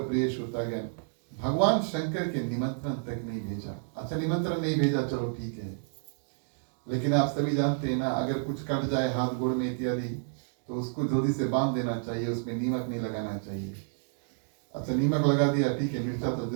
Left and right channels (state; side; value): silent; left; digital silence